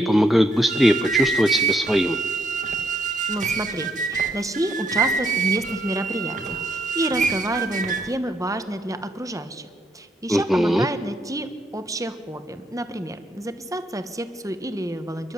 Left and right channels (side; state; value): both; normal; correlation 0.74